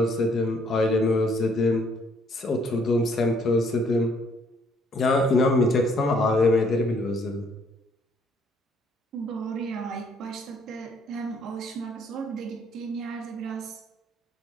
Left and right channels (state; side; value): normal; both; correlation 0.65